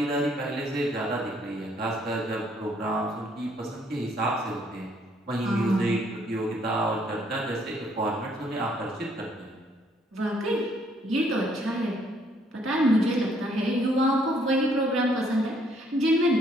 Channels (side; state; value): both; normal; correlation 0.67